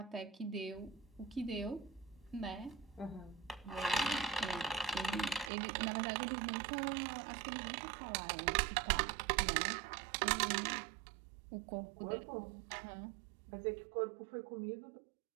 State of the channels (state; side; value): drops out; left; at 5.5 s